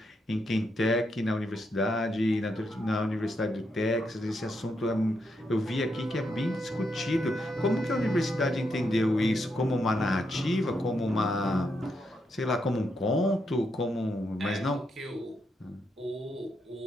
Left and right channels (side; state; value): both; normal; correlation 0.81